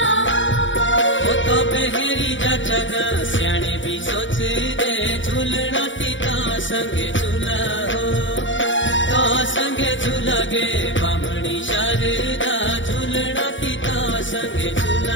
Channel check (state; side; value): late; right; 0.55 ms